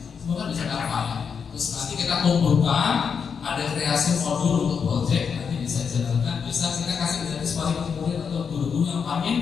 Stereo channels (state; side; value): quieter; right; 6.4 dB